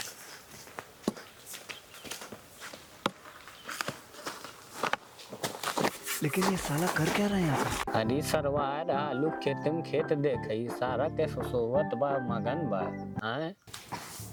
लेकिन ये साला कर क्या रहा है यहाँ पे? अरे सरवार आलू खेते में खेत देखई सारा के सोवत बा मगन बा हैं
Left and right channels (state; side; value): identical; both; correlation 1.00